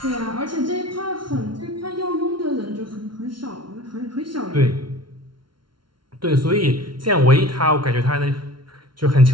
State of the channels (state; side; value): late; left; 0.73 ms